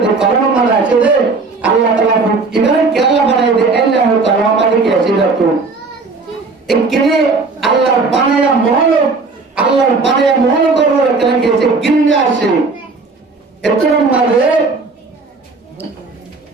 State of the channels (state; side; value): quieter; left; 4.1 dB